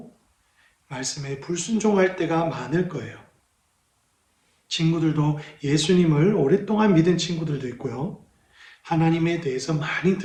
말씀에 불순종할 때가 많을 거예요. 친구들도 예수님을 오랫동안 믿은 친구들도 있고요. 하나님에 대해서 많이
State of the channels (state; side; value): identical; both; correlation 1.00